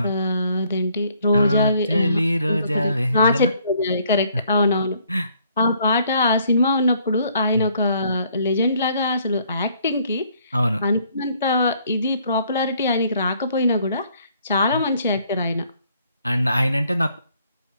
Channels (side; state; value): both; inverted; correlation -0.65